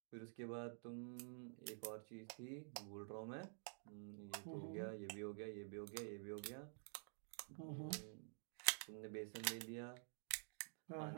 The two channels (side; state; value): left; silent; digital silence